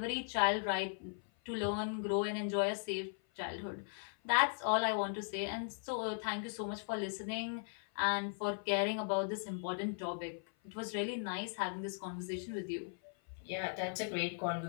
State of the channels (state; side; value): silent; right; 52 dB below the other